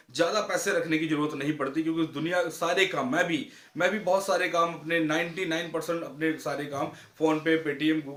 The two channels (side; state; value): both; identical; correlation 1.00